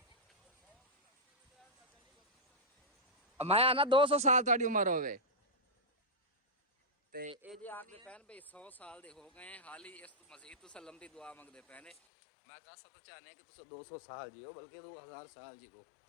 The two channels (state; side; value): drops out; right; at 12.0 s